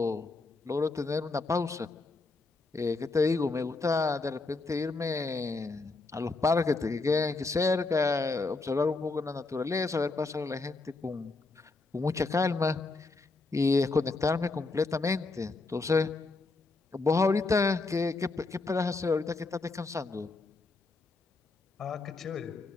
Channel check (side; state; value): right; quieter; 3.6 dB